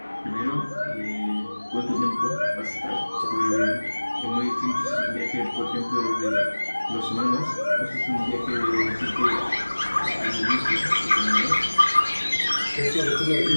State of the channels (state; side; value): inverted; both; correlation -1.00